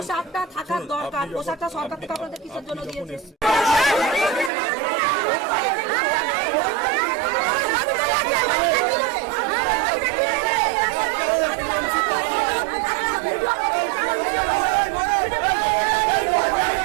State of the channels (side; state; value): left; drops out; at 4.5 s